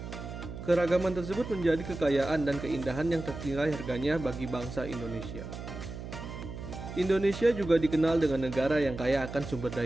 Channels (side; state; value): right; noise; hum, 9 dB below the sound